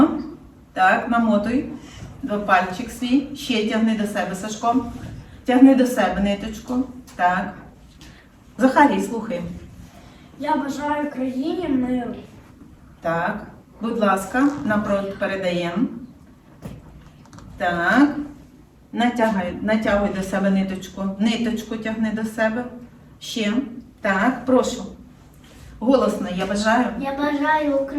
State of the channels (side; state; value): both; identical; correlation 1.00